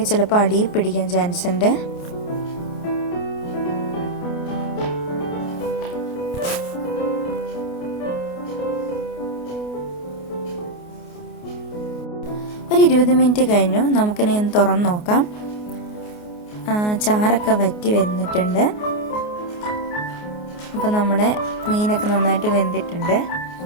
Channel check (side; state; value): right; late; 28 ms